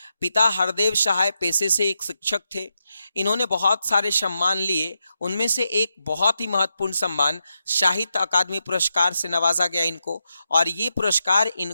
पिता हरदेव सहाय पेशे से एक शिक्षक थे। इन्होंने बहुत सारे सम्मान लिए, उनमें से एक बहुत ही महत्वपूर्ण सम्मान साहित्य अकादमी पुरस्कार से नवाजा गया इनको। और ये पुरस्कार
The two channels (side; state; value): both; inverted; correlation -0.86